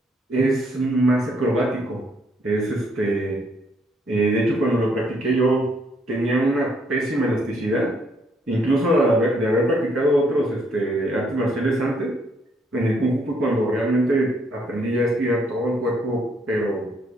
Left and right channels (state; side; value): normal; both; correlation 0.70